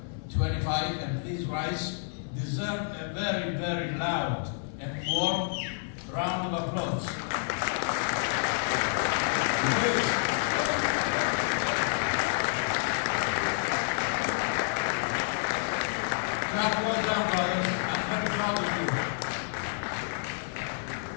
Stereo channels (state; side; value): silent; right; digital silence